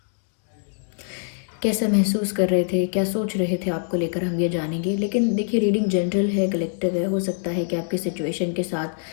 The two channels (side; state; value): right; silent; digital silence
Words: कैसा महसूस कर रहे थे, क्या सोच रहे थे आपको लेकर, हम ये जानेंगे। लेकिन देखिए, रीडिंग जनरल है, कलेक्टिव है। हो सकता है कि आपकी सिचुएशन के